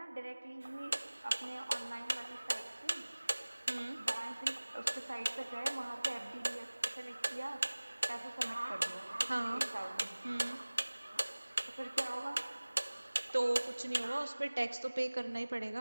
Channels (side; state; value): both; inverted; correlation -1.00